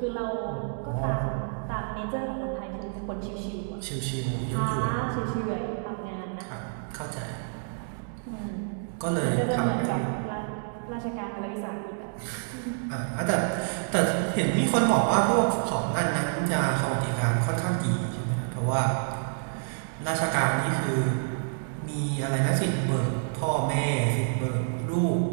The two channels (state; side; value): silent; left; digital silence